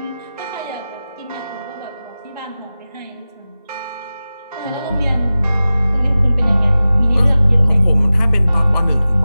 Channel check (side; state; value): both; inverted; correlation -0.95